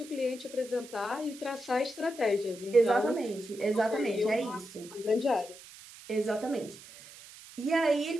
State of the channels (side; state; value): right; noise; hiss, 18 dB below the sound